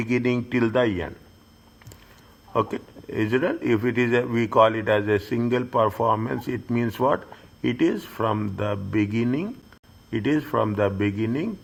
till the end. Okay, is it? If it is we call it as a single performance, it means what? It is from the beginning. It is from the beginning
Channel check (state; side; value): identical; both; correlation 1.00